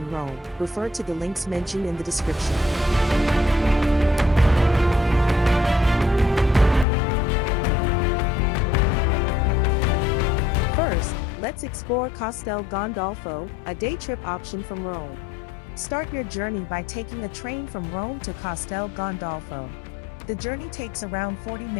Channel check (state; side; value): drops out; right; at 6.9 s